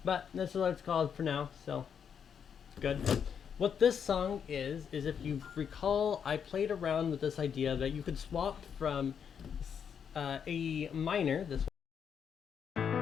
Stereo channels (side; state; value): right; quieter; 7.5 dB